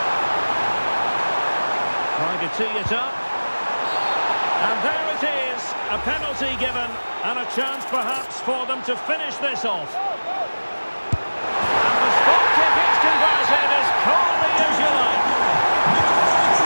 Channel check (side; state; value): both; inverted; correlation -1.00